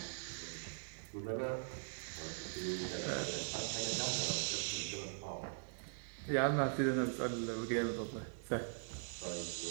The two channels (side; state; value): left; silent; 50 dB below the other